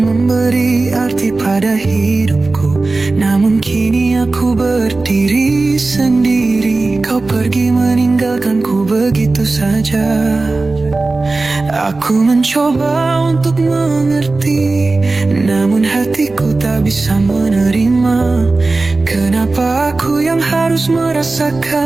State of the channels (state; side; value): quieter; left; 3.4 dB